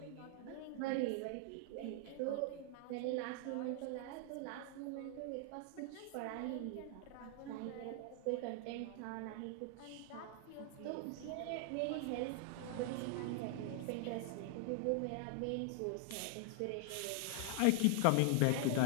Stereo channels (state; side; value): different; both; correlation 0.00